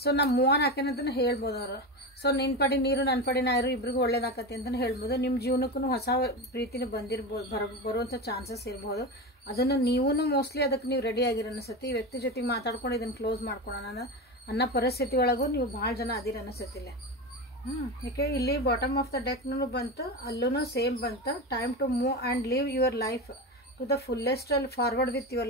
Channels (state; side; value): normal; both; correlation 0.21